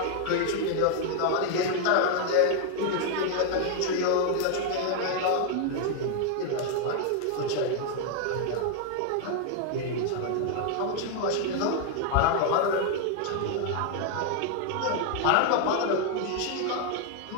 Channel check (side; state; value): both; different; correlation 0.00